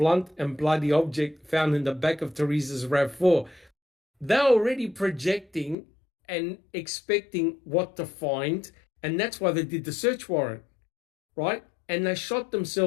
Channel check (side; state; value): right; drops out; at 5.8 s